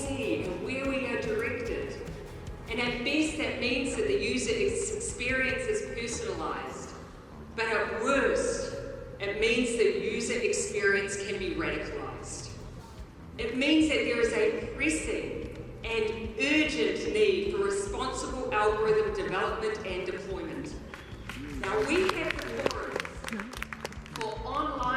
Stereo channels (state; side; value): identical; both; correlation 1.00